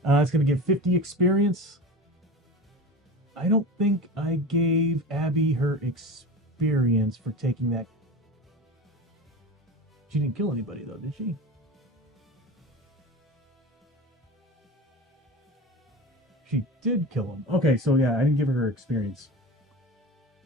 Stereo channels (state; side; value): normal; both; correlation 0.31